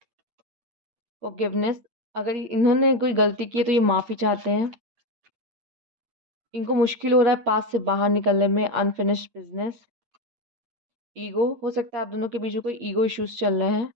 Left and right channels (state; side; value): late; left; 8.7 ms